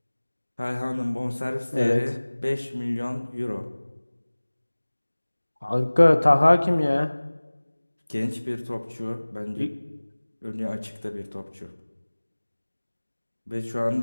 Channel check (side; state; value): both; inverted; correlation -1.00